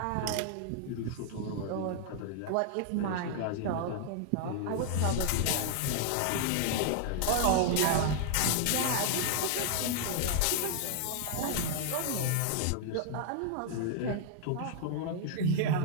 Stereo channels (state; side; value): different; both; correlation 0.00